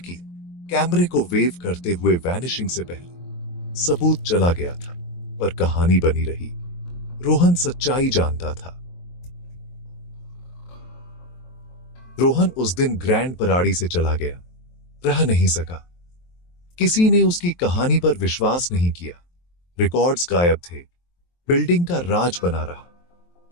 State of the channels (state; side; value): late; right; 23 ms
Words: कैमरे को वेव करते हुए वैनिशिंग से पहले। सबूत चला गया था, पर कहानी बनी रही। रोहन सच्चाई जानता था। रोहन उस दिन ग्रैंड पराड़ी से चला गया, रह नहीं सका। किसी ने उसकी कहानी पर विश्वास नहीं किया। रिकॉर्ड्स गायब थे, बिल्डिंग का राज बना रहा,